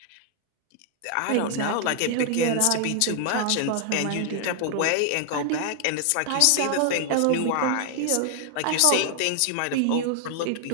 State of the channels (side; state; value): both; different; correlation 0.00